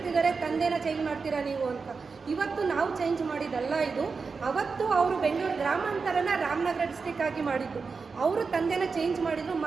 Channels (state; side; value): quieter; left; 4.8 dB